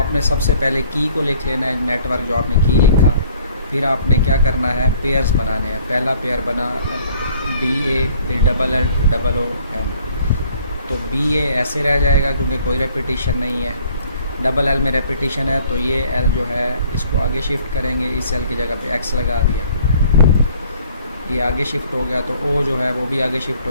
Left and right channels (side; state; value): both; inverted; correlation -0.57